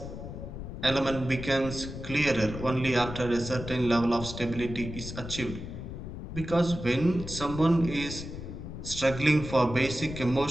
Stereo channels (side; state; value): left; noise; rumble, 9 dB below the sound